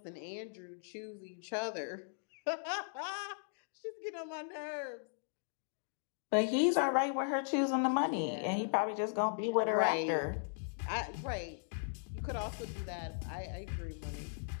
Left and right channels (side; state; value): right; silent; digital silence